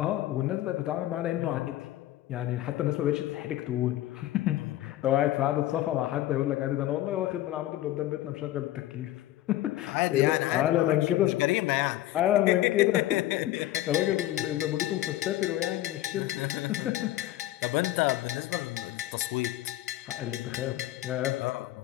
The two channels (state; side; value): quieter; right; 14.5 dB